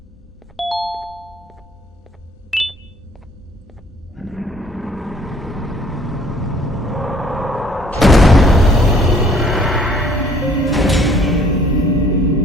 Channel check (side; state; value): both; normal; correlation 0.58